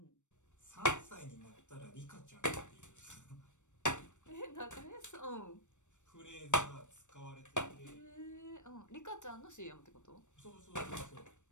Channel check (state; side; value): late; right; 0.85 ms